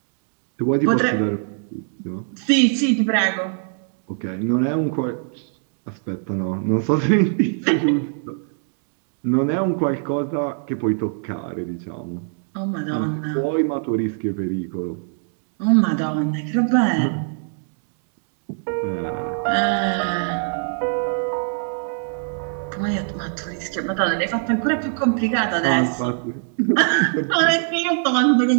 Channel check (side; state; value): left; silent; 64 dB below the other